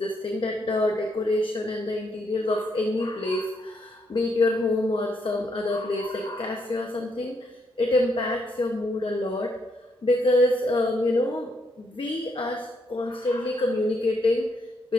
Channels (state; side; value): normal; both; correlation 0.76